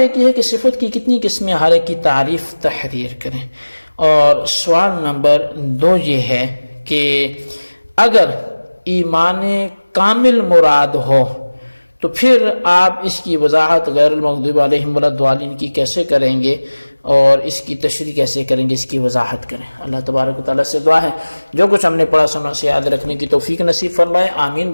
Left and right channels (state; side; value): inverted; both; correlation -1.00